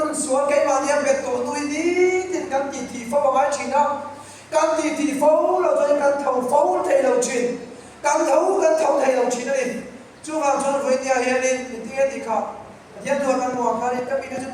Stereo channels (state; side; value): identical; both; correlation 1.00